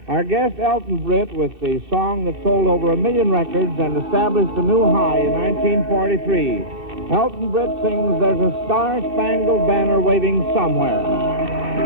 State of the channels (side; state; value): left; late; 2.6 ms